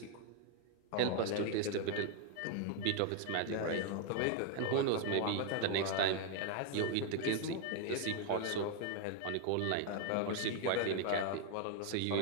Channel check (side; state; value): both; different; correlation 0.00